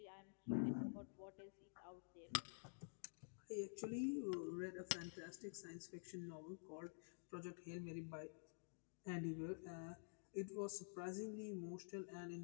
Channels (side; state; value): right; silent; digital silence